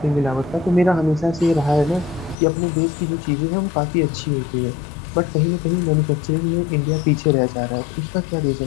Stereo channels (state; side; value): drops out; right; at 2.4 s